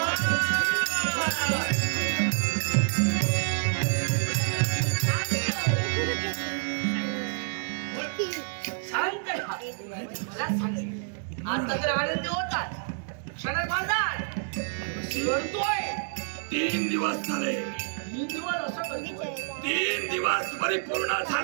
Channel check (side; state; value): left; silent; digital silence